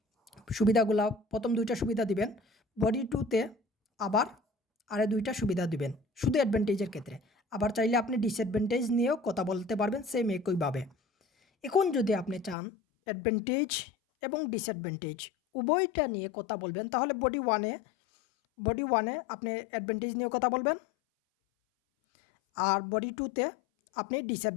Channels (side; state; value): right; drops out; at 12.6 s